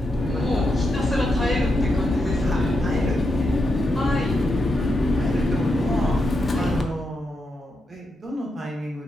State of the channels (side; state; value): both; normal; correlation 0.84